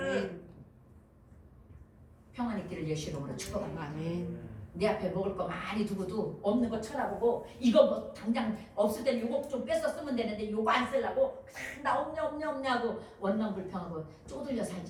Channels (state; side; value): identical; both; correlation 1.00